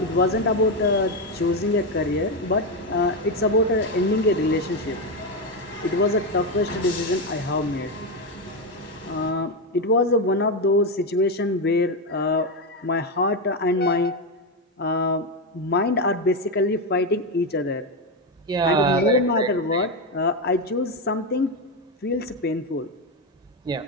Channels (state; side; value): normal; both; correlation 0.09